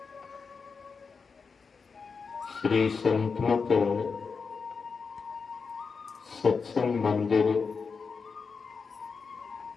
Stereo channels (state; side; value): quieter; right; 5.1 dB